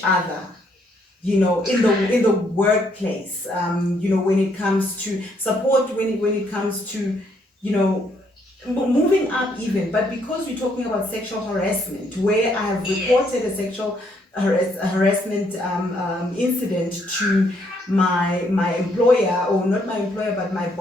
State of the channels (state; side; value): normal; both; correlation 0.71